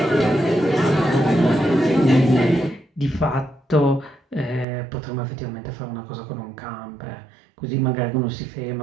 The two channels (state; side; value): drops out; left; at 4.7 s